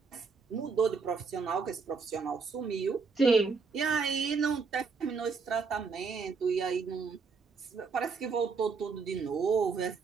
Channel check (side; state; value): left; quieter; 4.9 dB